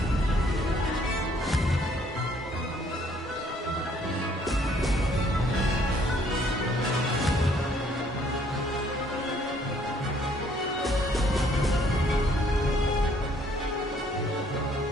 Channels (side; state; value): both; normal; correlation 0.63